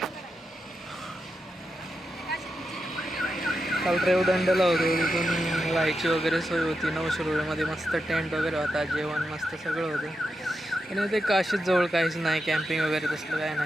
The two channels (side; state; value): both; normal; correlation 0.87